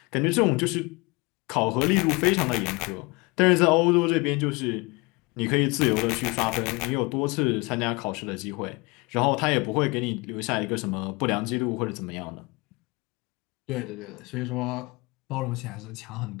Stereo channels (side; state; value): right; quieter; 26.2 dB